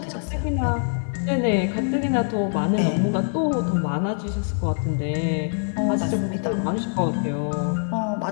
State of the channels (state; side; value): silent; right; 63 dB below the other